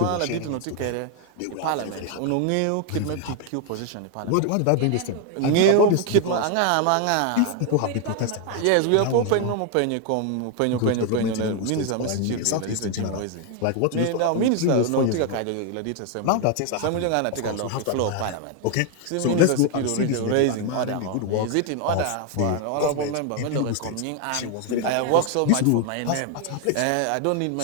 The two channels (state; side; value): different; both; correlation 0.01